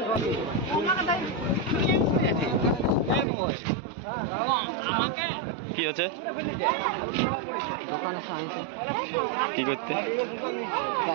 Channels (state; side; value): drops out; left; at 3.2 s